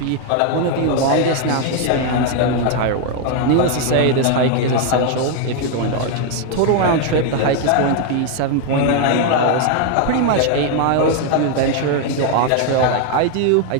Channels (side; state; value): both; different; correlation 0.01